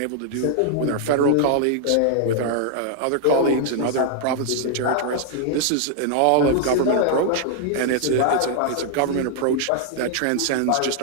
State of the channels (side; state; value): both; different; correlation 0.00